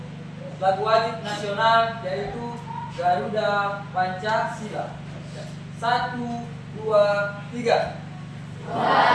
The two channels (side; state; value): both; identical; correlation 1.00